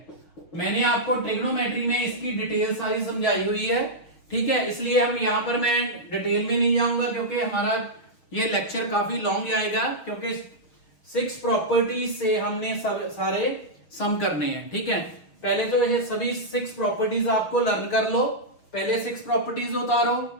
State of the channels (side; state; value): right; late; 6.4 ms